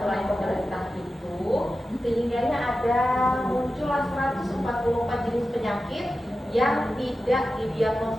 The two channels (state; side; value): normal; both; correlation 0.93